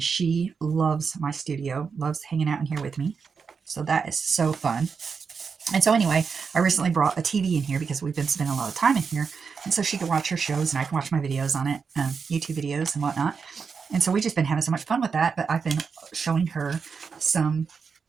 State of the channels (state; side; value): quieter; left; 5.6 dB